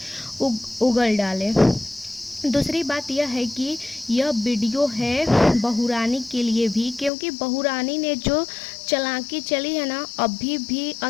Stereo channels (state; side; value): drops out; right; at 7.1 s